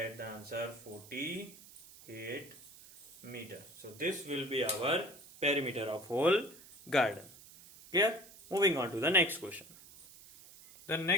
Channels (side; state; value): right; noise; hiss, 20 dB below the sound